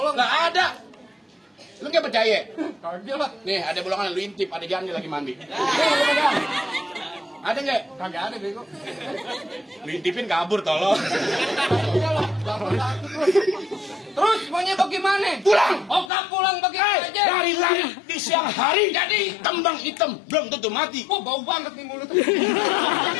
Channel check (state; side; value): drops out; right; at 16.1 s